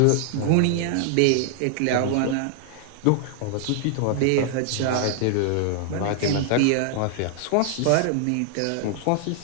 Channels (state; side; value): different; both; correlation 0.00